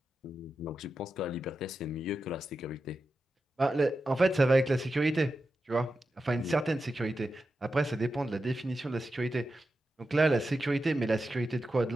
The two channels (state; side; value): normal; both; correlation 0.90